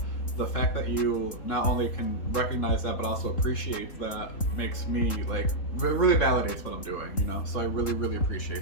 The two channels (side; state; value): right; late; 3.7 ms